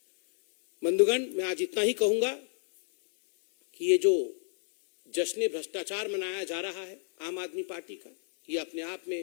बंधुगण, मैं आज इतना ही कहूंगा कि ये जो जश्न भ्रष्टाचार मनाया जा रहा है आम आदमी पार्टी का, ये अपने आप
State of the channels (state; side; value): silent; right; 56 dB below the other